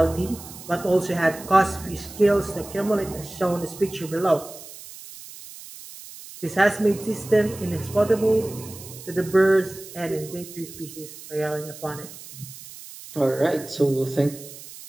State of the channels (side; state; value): right; noise; hiss, 15 dB below the sound